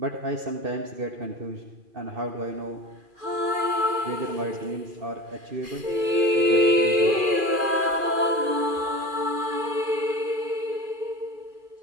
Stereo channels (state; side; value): late; left; 2.4 ms